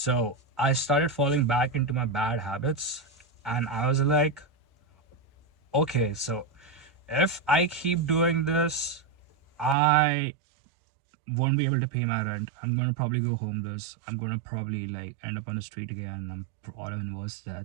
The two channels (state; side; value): drops out; left; at 9.8 s